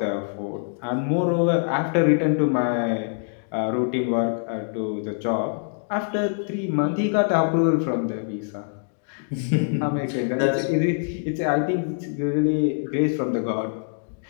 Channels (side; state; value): right; silent; digital silence